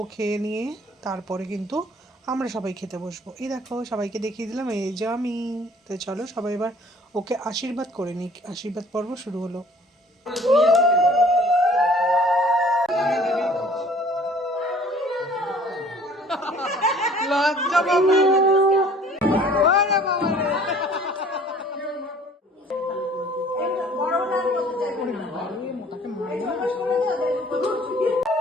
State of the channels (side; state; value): both; normal; correlation 0.53